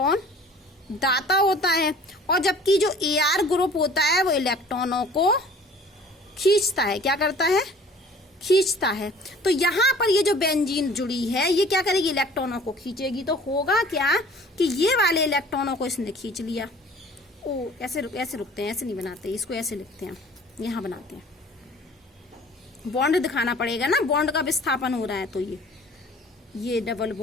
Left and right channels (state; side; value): normal; both; correlation 0.49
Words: दाता होता है, और जबकि जो Ar ग्रुप होता है वो इलेक्ट्रॉनों को खींचता है। क्या करता है, खींचता है। तो यहाँ पर ये जो बेंजीन जुड़ी है ये क्या करेगी, इलेक्ट्रॉनों को खींचेगी। तो होगा क्या कि ये वाले इलेक्ट्रॉनों को इसने खींच लिया। ओ ऐसे रुकते हैं, ऐसे नहीं बनाते, इसको ऐसे लिखते हैं, यहाँ बनाते हैं। बॉन्ड दिखाना पड़ेगा ना, बॉन्ड का विस्थापन हो रहा है, तो ये डबल